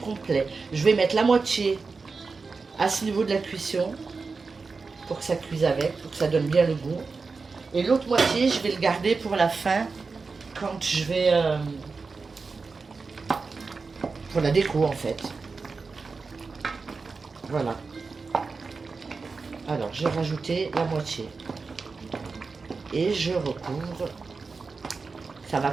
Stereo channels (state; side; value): quieter; left; 4.4 dB